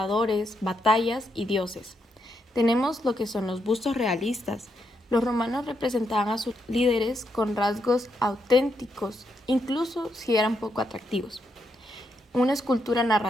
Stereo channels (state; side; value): normal; both; correlation 0.80